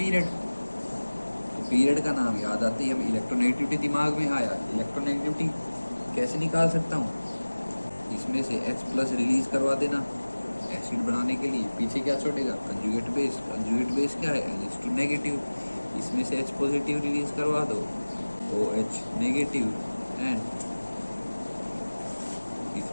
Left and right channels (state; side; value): inverted; both; correlation -1.00